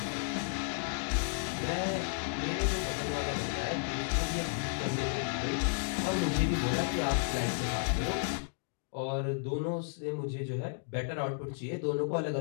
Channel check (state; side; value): silent; right; digital silence